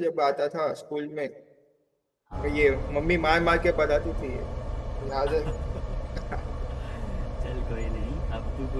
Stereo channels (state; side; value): identical; both; correlation 1.00